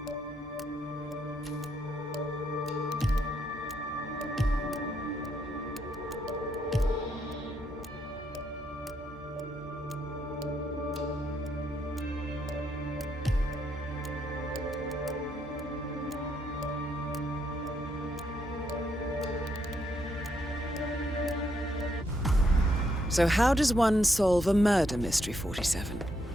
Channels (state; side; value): normal; both; correlation 0.76